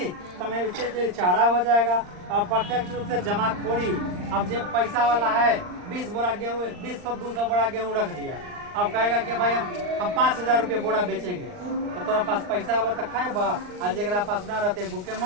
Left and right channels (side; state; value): left; late; 39 ms